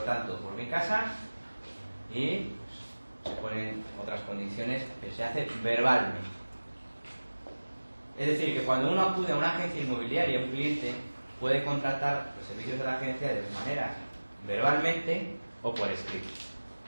por mi casa y pues, se ponen otras condiciones, pero se hace verbalmente. Es decir, que cuando uno acude a una agencia inmobiliaria, un cliente puede contratar los servicios de la agencia de dos maneras: verbalmente o por escrito.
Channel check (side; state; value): both; inverted; correlation -1.00